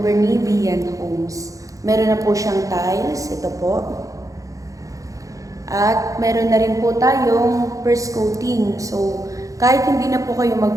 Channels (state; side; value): late; left; 0.16 ms